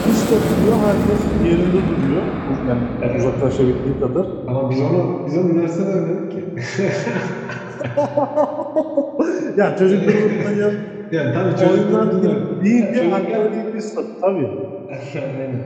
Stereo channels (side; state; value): both; identical; correlation 1.00